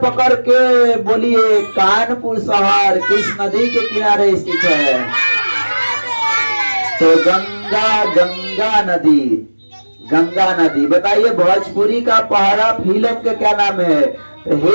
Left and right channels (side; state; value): both; inverted; correlation -1.00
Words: के बोलिए कानपुर शहर किस नदी के किनारे स्थित है? तो गंगा, गंगा नदी। गंगा नदी। बताइए भोजपुरी का पहाड़ा फिल्म के क्या नाम है? तो